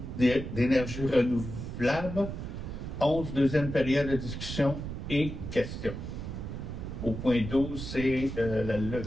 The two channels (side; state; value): right; noise; rumble, 7 dB below the sound